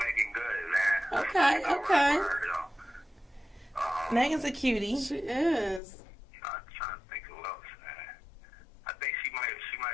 Good, man. Okay. Megan's a cutie. She is. I'm trying to think who else, man. I think she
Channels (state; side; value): drops out; right; at 5.8 s